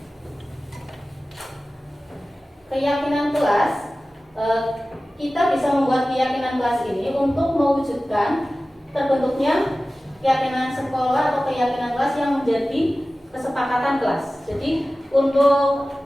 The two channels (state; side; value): normal; both; correlation 0.96